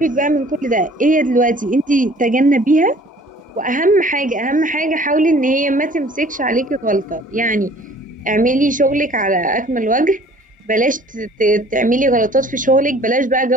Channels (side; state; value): both; normal; correlation 0.52